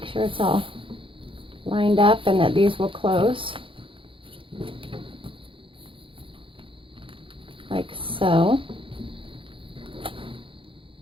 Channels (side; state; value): left; late; 0.25 ms